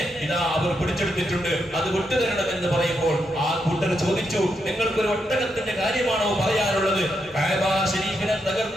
ഇതാ അവർ പിടിച്ചെടുത്തിട്ടുണ്ട്, അത് വിട്ടുതരണമെന്ന് പറയുമ്പോൾ ആ കൂട്ടർ ചോദിച്ചു, നിങ്ങൾക്കൊരു ഒട്ടകത്തിന്റെ കാര്യമാണോ പറയാനുള്ളത്? കഅബ ശരീഫിനെ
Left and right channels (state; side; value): normal; both; correlation 0.82